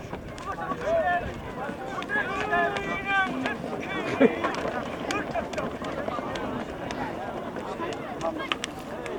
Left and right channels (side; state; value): both; identical; correlation 1.00